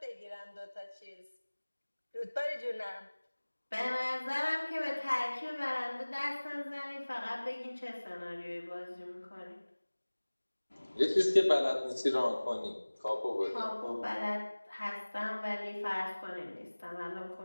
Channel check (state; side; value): inverted; both; correlation -1.00